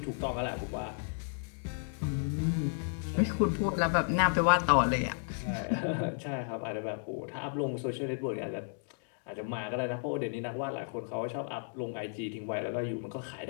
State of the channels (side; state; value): right; silent; digital silence